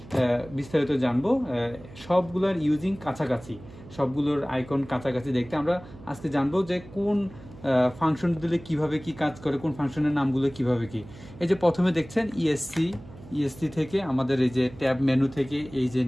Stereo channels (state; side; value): noise; right; hum, 18 dB below the sound